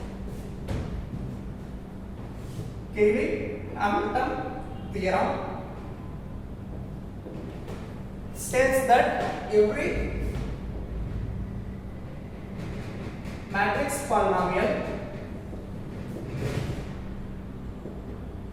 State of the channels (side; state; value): both; identical; correlation 1.00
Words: Cayley-Hamilton theorem states that every matrix polynomial